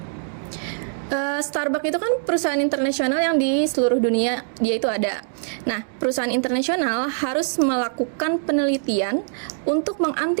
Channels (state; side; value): silent; left; digital silence